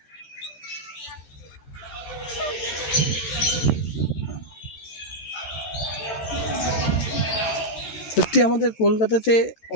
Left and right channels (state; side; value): late; right; 13 ms